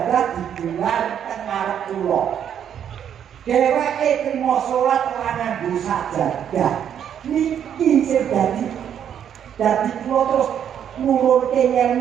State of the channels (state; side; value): quieter; left; 9.1 dB